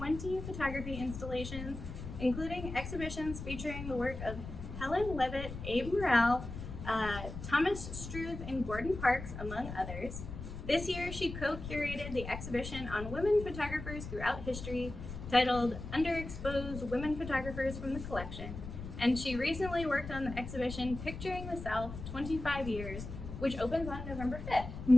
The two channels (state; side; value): noise; left; rumble, 9 dB below the sound